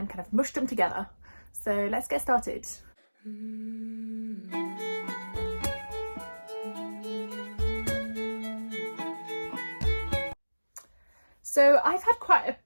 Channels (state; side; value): inverted; both; correlation -1.00